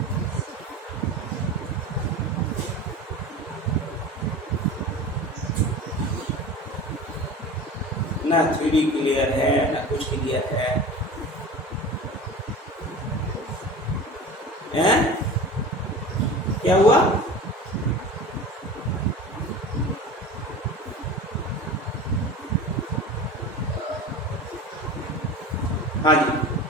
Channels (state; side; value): normal; both; correlation 0.34